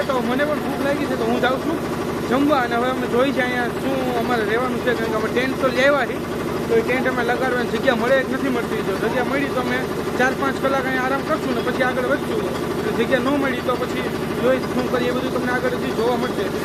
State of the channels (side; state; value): both; identical; correlation 1.00